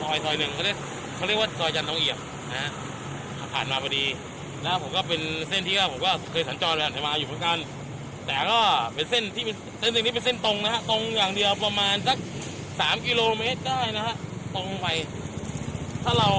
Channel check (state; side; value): identical; both; correlation 1.00